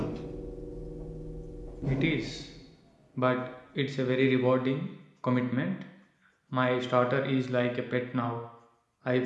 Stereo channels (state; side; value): identical; both; correlation 1.00